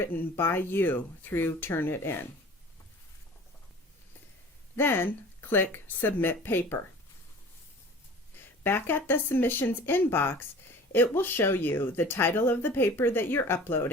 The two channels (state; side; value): normal; both; correlation 0.43